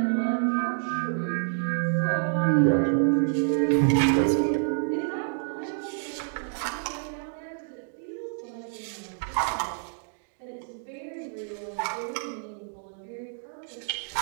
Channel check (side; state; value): left; silent; digital silence